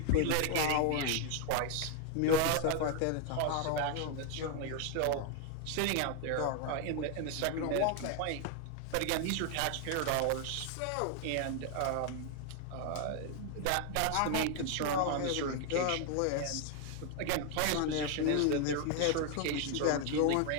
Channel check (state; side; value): different; both; correlation 0.00